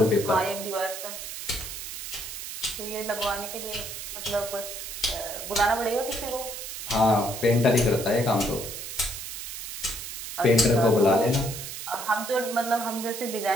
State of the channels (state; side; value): noise; right; hiss, 8 dB below the sound